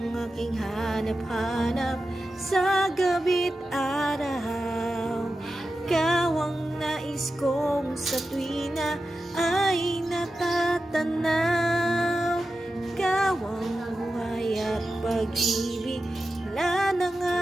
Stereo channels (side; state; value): both; normal; correlation 0.92